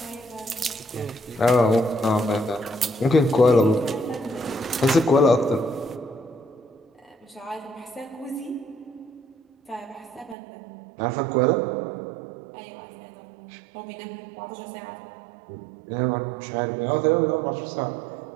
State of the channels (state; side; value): drops out; left; at 10.4 s